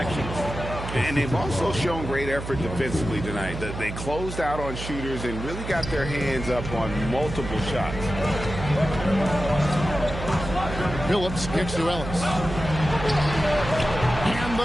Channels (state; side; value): noise; right; hum, 8 dB below the sound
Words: And they've also shown great effort defensively tonight. They closed out on shooters and really got their hands up on multiple shots. Phillips kicks to Ellis. And